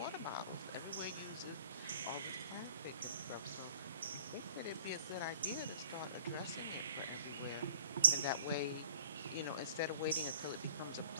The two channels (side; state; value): both; inverted; correlation -0.50